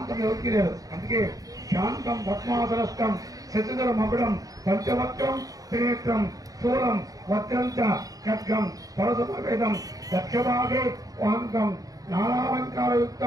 ఎవరికి లేదు. అందుకే శాంతం పద్మాసనస్థం శశిధర మకుడం పంచవక్రం త్రినేత్రం స్థూలం వజ్రం చ ఖడ్గం పరశుభేదం దక్షభాగే వాంతం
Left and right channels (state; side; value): late; left; 0.17 ms